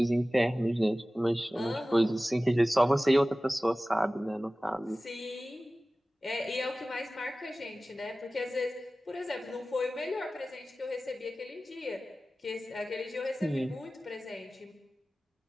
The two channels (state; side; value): normal; both; correlation 0.96